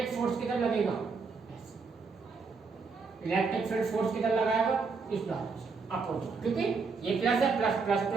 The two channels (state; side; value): quieter; left; 4.7 dB